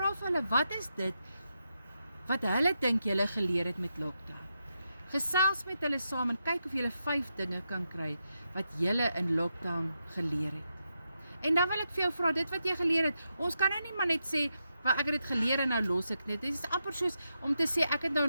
vir hulle, wat is dit, wat hulle dink julle geleer het met lockdown? Gesels met hulle saam en kyk of julle 5 dinge kan kry, wat julle in lockdown geleer het. En dan wil ek vir jou vra, dit wat jy geleer het, ons kan nou nie maar net sê, maar ek het dit geleer en nou los ek net. Dit is amper soos om te sê, ek het nou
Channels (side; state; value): both; inverted; correlation -0.85